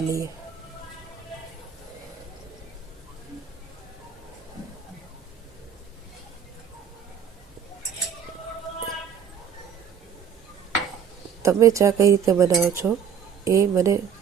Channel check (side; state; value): left; quieter; 7.6 dB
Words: લઈએ. તમે ચા કઈ રીતે બનાવો છો એ મને